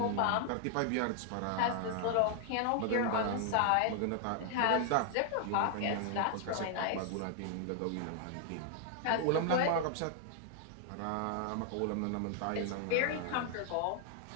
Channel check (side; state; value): both; different; correlation 0.00